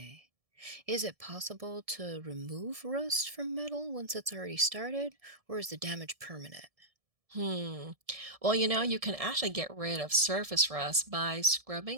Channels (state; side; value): late; left; 1.7 ms